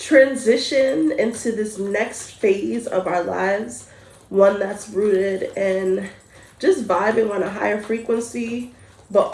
into this next phase of our lives, one that's rooted in just vibing on a higher frequency, but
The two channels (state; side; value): identical; both; correlation 1.00